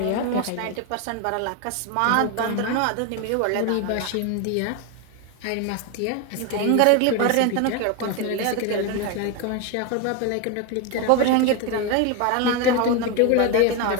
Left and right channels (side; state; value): both; different; correlation 0.02